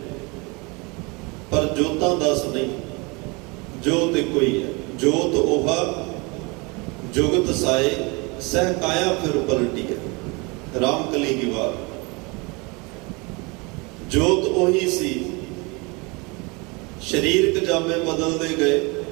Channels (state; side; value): quieter; left; 27.9 dB